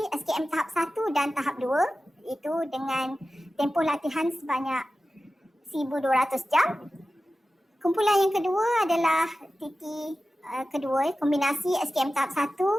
SKM tahap 1 dan tahap 2 itu dengan tempoh latihan sebanyak 1,200 jam. Kumpulan yang kedua adalah TT kedua kombinasi SKM tahap 1,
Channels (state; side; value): normal; both; correlation 0.94